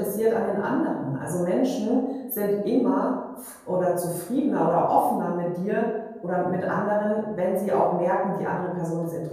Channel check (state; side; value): identical; both; correlation 1.00